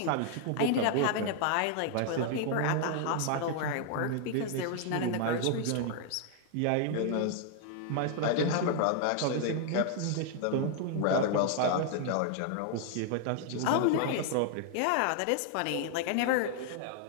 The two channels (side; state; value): both; different; correlation 0.00